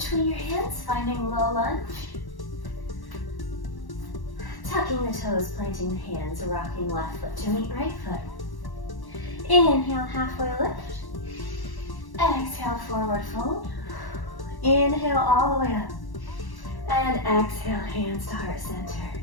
your hands, finding low lunge. Tucking the toes, planting the hands, rocking left foot to meet right foot. Inhale, halfway lift. Exhale, forward fold. Inhale all the way up. And exhale, hands to heart center.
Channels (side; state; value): right; late; 1.1 ms